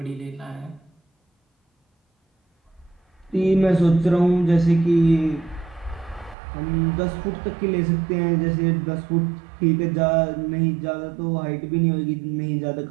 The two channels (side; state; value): left; drops out; at 6.4 s